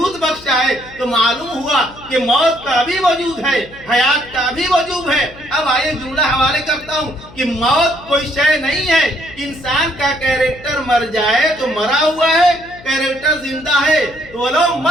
بخشا ہے، تو معلوم ہوا کہ موت کا بھی وجود ہے، حیات کا بھی وجود ہے۔ اب آئیے جملہ حوالے کرتا ہوں کہ موت کوئی شے نہیں ہے، انسان کا کیریکٹر مر جائے تو مرا ہوا ہے، کیریکٹر زندہ ہے تو وہ لوگ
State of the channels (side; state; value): left; noise; hum, 21 dB below the sound